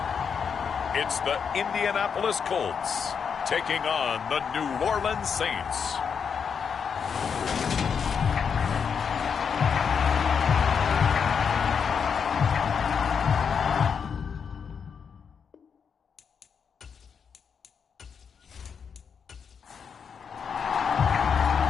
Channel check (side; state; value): right; quieter; 6.6 dB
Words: It's the Indianapolis Colts taking on the New Orleans Saints.